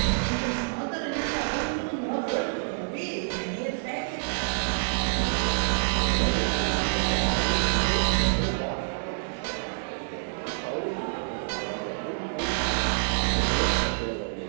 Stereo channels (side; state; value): left; silent; digital silence